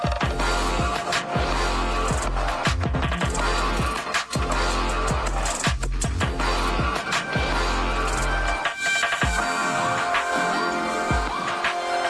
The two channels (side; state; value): both; identical; correlation 1.00